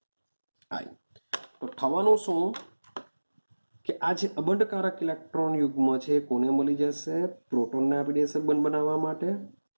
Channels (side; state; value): both; inverted; correlation -1.00